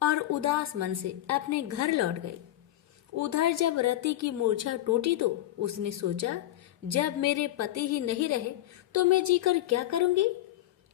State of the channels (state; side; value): quieter; right; 14.4 dB